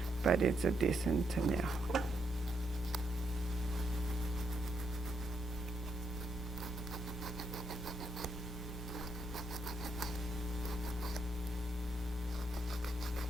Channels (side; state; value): both; normal; correlation 0.78